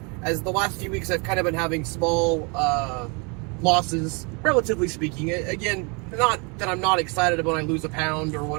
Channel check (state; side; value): quieter; left; 32.3 dB